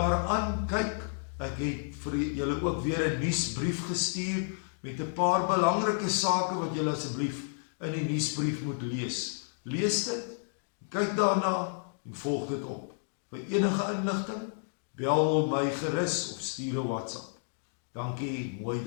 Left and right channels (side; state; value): right; silent; digital silence